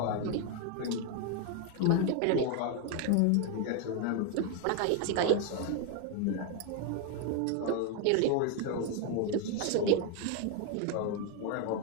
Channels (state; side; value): different; both; correlation 0.01